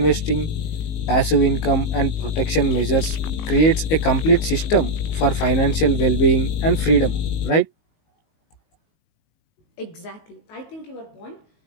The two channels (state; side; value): late; right; 19 ms